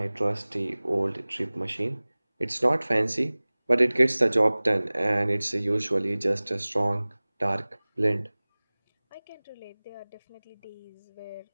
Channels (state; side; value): inverted; both; correlation -1.00